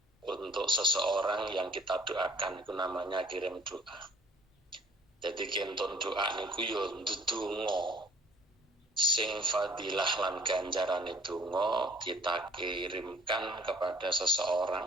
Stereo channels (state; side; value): normal; both; correlation 0.54